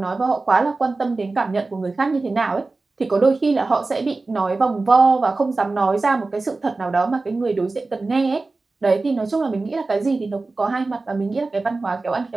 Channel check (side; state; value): left; quieter; 3.5 dB